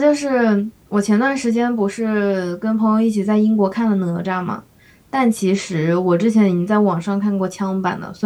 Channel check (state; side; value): identical; both; correlation 1.00